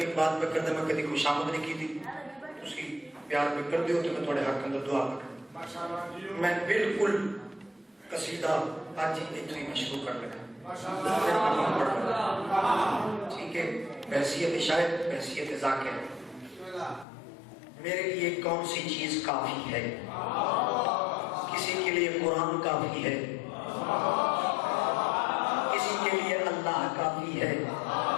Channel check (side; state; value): right; drops out; at 17.1 s